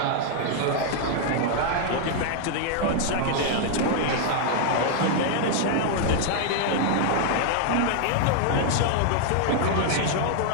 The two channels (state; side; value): different; both; correlation 0.00